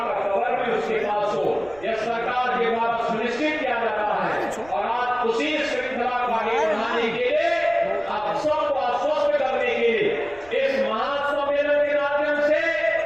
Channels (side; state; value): right; noise; rumble, 23 dB below the sound